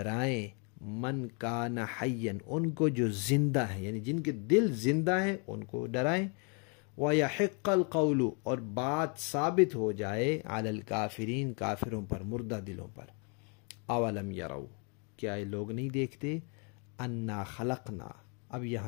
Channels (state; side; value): quieter; right; 36.7 dB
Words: من کان حیا، ان کو جو زندہ ہیں، یعنی جن کے دل زندہ ہیں ان کو ڈرائیں، وَيَحِقَّ الْقَوْلُ، اور بات ثابت ہو جائے، عَلَى الْكَافِرِينَ، کافروں پر، مردہ دلوں پر۔ اولم یروا، کیا یہ لوگ نہیں دیکھتے، انا خلقنا، اب